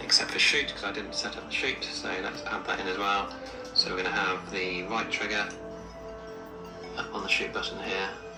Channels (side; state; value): both; identical; correlation 1.00